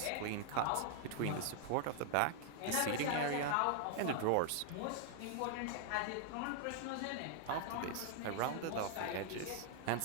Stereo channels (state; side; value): different; both; correlation 0.00